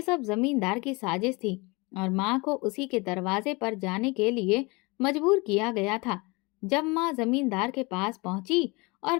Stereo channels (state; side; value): quieter; right; 26.3 dB